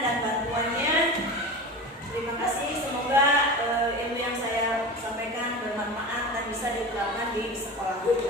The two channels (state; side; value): normal; both; correlation 0.30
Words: bantuannya. Terima kasih, semoga ilmu yang saya sampaikan bermanfaat dan bisa diterapkan di sekolah